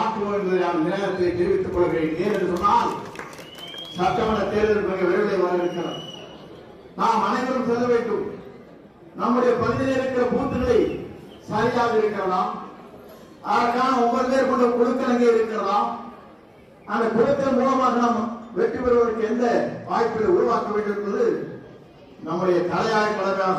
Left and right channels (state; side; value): identical; both; correlation 1.00